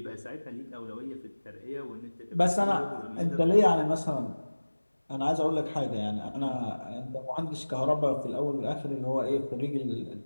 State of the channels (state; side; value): inverted; both; correlation -1.00